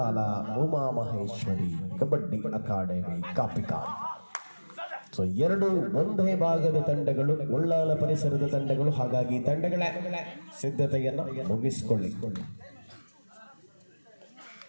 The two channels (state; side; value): inverted; both; correlation -1.00